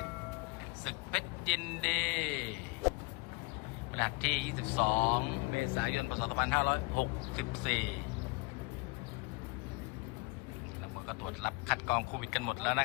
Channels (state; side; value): quieter; right; 27.7 dB